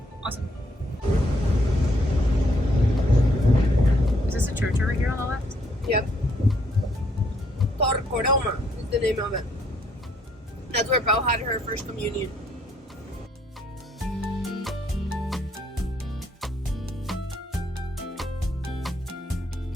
Awesome. Is this a church over here on the left? Yep. Torcoroma is the name of it. That's where Pau had her first communion.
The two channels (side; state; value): both; normal; correlation 0.70